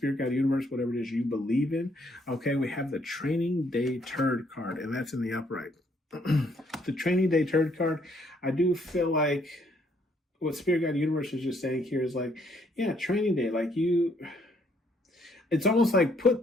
Guide Universe, whatever it is you believe in. Okay, we have the Training Day Turd card, and that's in the upright. The Training Day Turd card, I do feel like what Spirit Guide Universe is just saying here is like, yeah, Training Day, like it's almost like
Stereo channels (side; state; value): both; normal; correlation 0.68